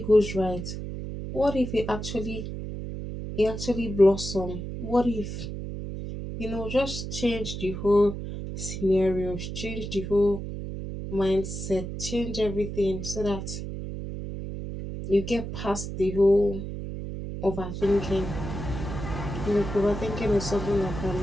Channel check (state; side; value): noise; right; hum, 6 dB below the sound